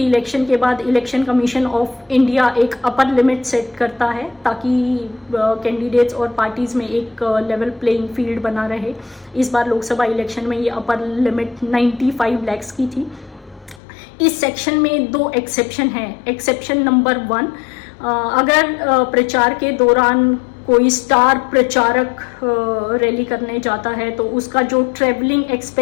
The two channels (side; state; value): right; drops out; at 13.8 s